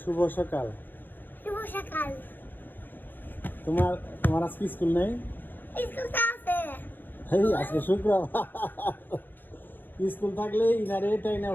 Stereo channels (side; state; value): right; late; 0.091 ms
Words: সকাল। শুভ সকাল। তোমার তোমার আজকে স্কুল নেই? স্কুল তো আছে। এই আজকে শুক্রবার। স্কুল থাকলে ইনারে টাইনে